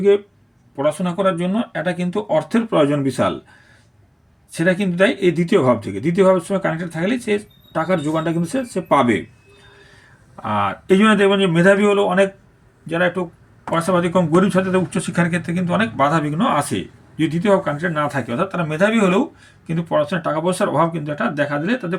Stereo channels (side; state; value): both; identical; correlation 1.00